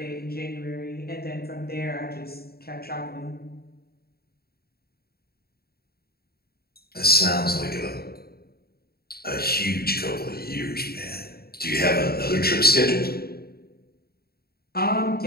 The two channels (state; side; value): late; right; 0.45 ms